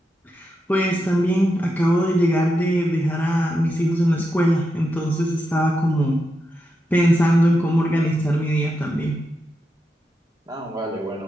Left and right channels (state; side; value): normal; both; correlation 0.86